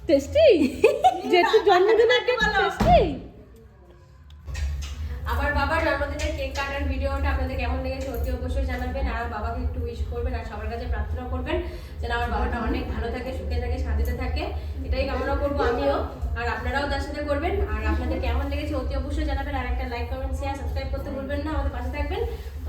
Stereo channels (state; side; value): identical; both; correlation 1.00